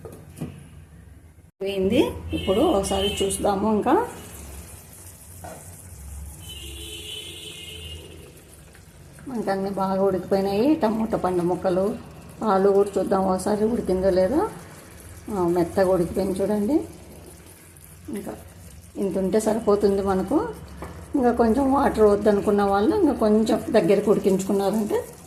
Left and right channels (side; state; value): both; identical; correlation 1.00